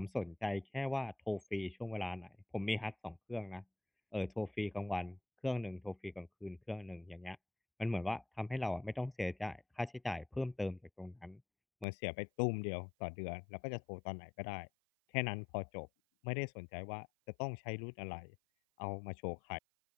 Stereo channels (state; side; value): drops out; right; at 11.9 s